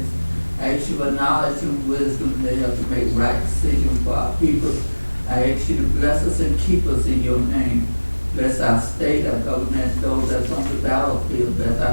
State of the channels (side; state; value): both; inverted; correlation -1.00